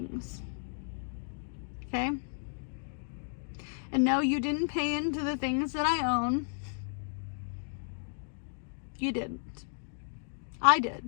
Okay? And no, you didn't pay into the things that I own. You didn't. I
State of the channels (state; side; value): silent; right; digital silence